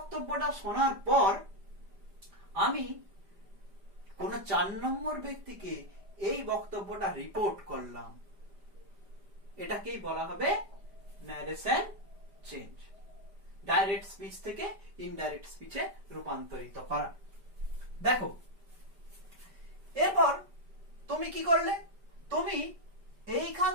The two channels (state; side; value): late; left; 5.1 ms